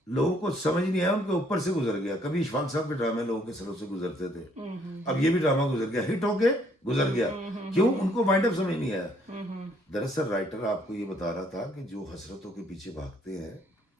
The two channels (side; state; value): both; normal; correlation 0.66